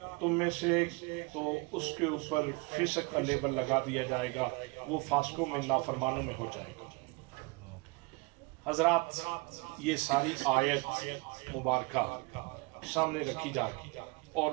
تم میں سے تو اس کے اوپر فسق کا لیبل لگا دیا جائے گا، وہ فاسقوں میں نافرمانوں میں ہو جائے گا۔ حضرات، یہ ساری آیت مبارکہ سامنے رکھی جائے اور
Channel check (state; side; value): quieter; left; 27.1 dB